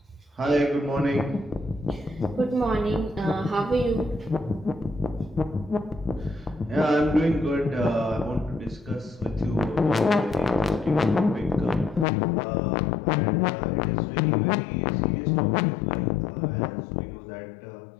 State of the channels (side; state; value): right; drops out; at 12.1 s